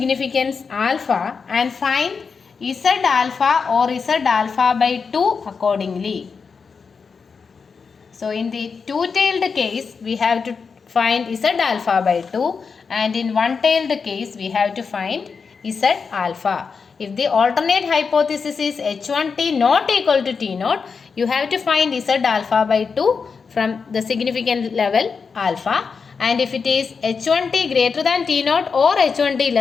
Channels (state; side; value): quieter; right; 5.4 dB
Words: alpha and find Z alpha or Z alpha by 2 accordingly. So in the two-tailed case, we have to find Z alpha by 2, and in one-tailed case, we have to find Z alpha. If the alternate hypothesis is h1t not equal to t naught, you have to find Z alpha by 2 from the significant level alpha. And if it is h1t greater than t naught or h1t